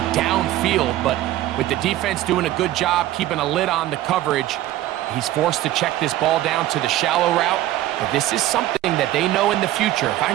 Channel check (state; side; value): quieter; left; 14.6 dB